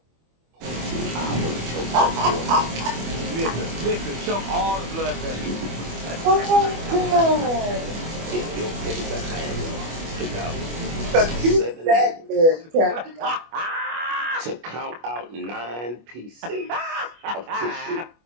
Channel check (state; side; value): late; left; 25 ms